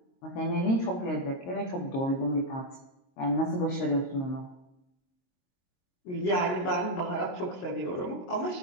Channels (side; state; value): right; late; 22 ms